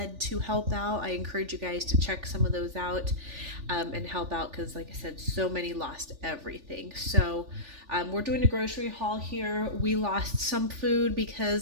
to help out, I encourage you guys to check some of those out and help out, because like I said, so many lost everything. So we're doing a grocery haul here. We lost some food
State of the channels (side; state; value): left; late; 3.4 ms